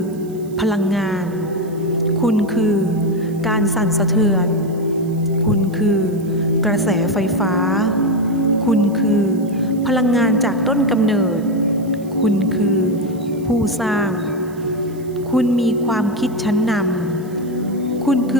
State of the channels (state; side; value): noise; right; hiss, 25 dB below the sound